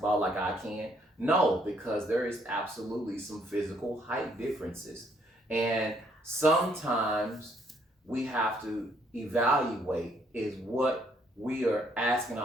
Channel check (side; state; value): both; normal; correlation 0.69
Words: like I can? No, because there is absolutely some physical height differences. And sometimes we have to evaluate, is what we are asking